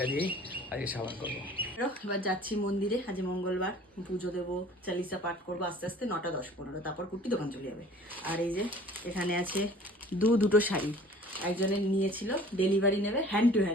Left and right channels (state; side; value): normal; both; correlation 0.48